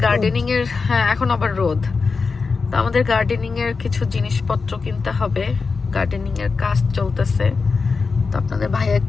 গার্ডেনিং এর, হ্যাঁ এখন আবার রোদ। তো আমাদের গার্ডেনিং এর কিছু জিনিসপত্র কিনতে হবে, গার্ডেনিং এর কাজ চলতেছে। তো আপনাদের ভাইয়া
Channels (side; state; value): right; quieter; 4.7 dB